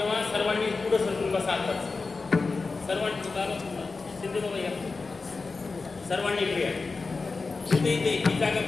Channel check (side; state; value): right; quieter; 4.1 dB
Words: सर्वांनी पुढं सरकून बसा. आताच सर्वांनी बाबा शिंदे बाबा या, सर्वांनी इकडे या, इथे इथे ही जागा